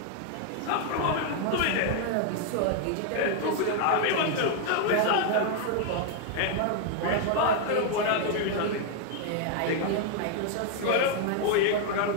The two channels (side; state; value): both; different; correlation 0.00